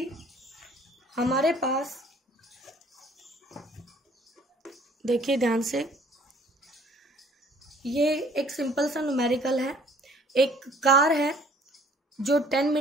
हमारे पास, देखिए ध्यान से, ये एक सिंपल सा न्यूमेरिकल है। एक कार है जो 10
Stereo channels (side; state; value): both; normal; correlation 0.56